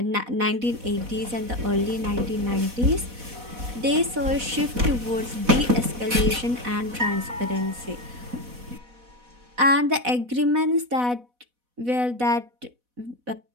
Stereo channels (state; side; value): late; left; 4.1 ms